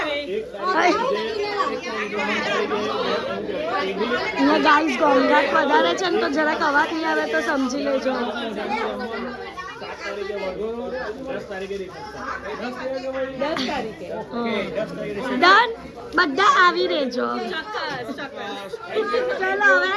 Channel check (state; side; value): identical; both; correlation 1.00